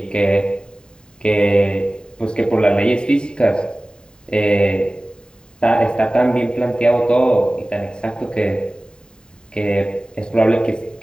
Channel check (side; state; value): right; late; 0.048 ms